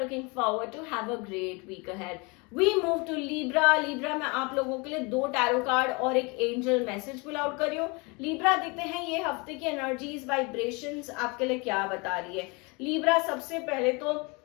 forward to. Have a great week ahead. We move to Libra. Libra में आप लोगों के लिए 2 tarot card और एक angel message pull out करियो. Libra देखते हैं ये हफ्ते की एनर्जीज, वाइब्रेशंस आपके लिए क्या बता रही है. Libra सबसे पहले तो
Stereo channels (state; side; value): quieter; right; 28.9 dB